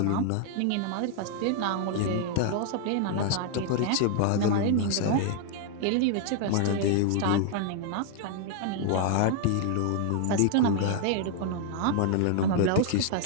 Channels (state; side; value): different; both; correlation 0.00